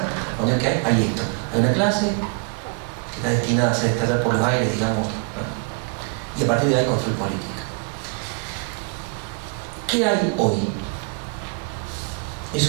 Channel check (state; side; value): quieter; left; 34.9 dB